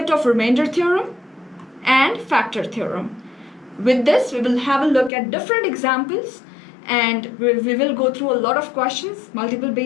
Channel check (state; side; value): drops out; right; at 5.1 s